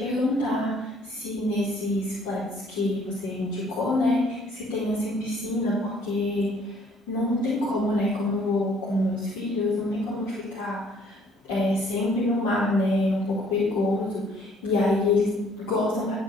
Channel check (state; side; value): normal; both; correlation 0.60